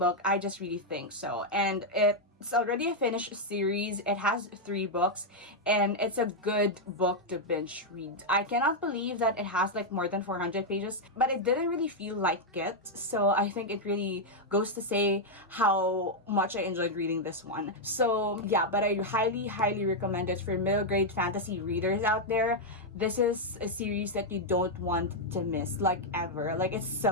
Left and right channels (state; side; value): normal; both; correlation -0.01